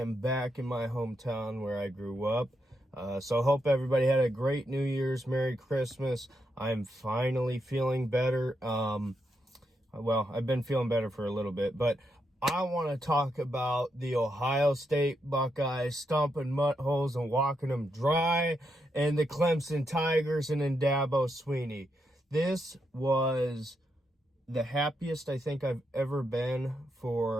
back in my hometown where I grew up. So hope everybody had a great New Year's, Merry Christmas. I'm finally feeling better. I've been feeling better for a little bit, but I want to talk about the Ohio State Buckeyes stomping mud holes and walking them dry, and the Clemson Tigers and Dabo Swinney. This was the happiest I think I've ever been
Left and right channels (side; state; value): both; normal; correlation 0.82